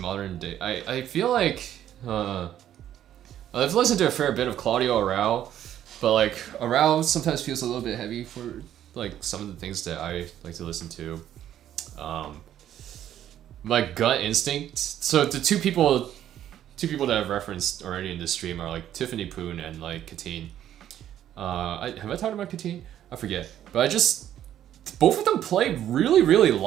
day. I feel like I've listened to a fair bit of Claudio Arrau, but like Arrau sometimes feels a little bit heavy for like some of the things that I like to listen to. My gut instinct. So the two people that I've referenced already in this stream are like Tiffany Poon and like Katine. Have I talked about Katine? I forget. But both of them play really, really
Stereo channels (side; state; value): left; quieter; 11.2 dB